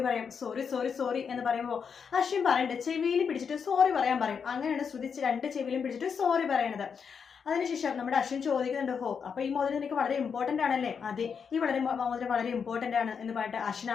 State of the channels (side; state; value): right; quieter; 6.4 dB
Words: പറയാം, സോറി സോറി സോറി എന്ന് പറയുമ്പോൾ അശ്വിൻ പറയുന്നുണ്ട് ചെവിയിൽ പിടിച്ചിട്ട് സോറി പറയാൻ പറയും. അങ്ങനെയാണ് ശ്രുതി 2 ചെവിയിലും പിടിച്ചിട്ട് സോറി പറയണത്. അതിനുശേഷം നമ്മുടെ അശ്വിൻ ചോദിക്കുന്നുണ്ട്, ഹോ അപ്പൊ ഈ മോതിരം എനിക്ക് വളരെ ഇമ്പോർട്ടന്റ് ആണല്ലേ? അതെ, ഈ മോതിരം വളരെ ഇമ്പോർട്ടന്റ് ആണ് എന്ന് പറഞ്ഞിട്ട് അശ്വിൻ